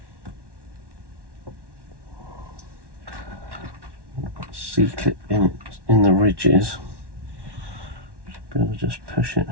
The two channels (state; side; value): late; left; 1.1 ms